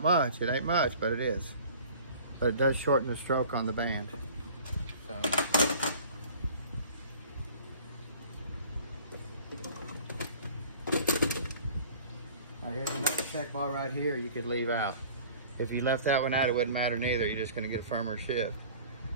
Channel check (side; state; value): both; inverted; correlation -0.47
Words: much, it ain't much, but it is. But it does shorten the stroke on the band. So. Now here's another check ball right here you could leave out. If you left that one out, it wouldn't matter neither. You're just gonna get firmer ship.